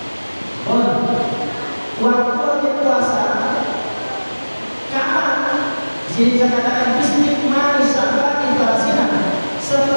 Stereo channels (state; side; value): inverted; both; correlation -1.00